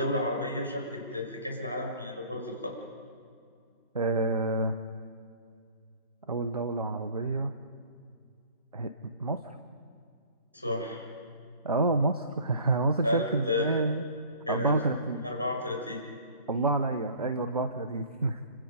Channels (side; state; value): both; inverted; correlation -0.49